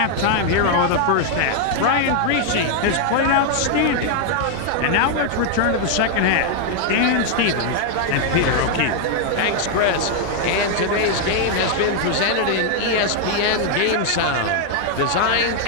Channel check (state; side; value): different; both; correlation 0.00